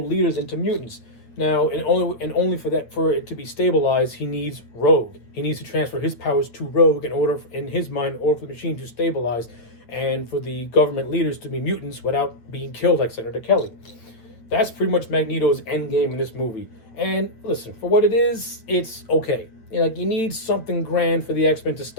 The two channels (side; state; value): right; late; 8.7 ms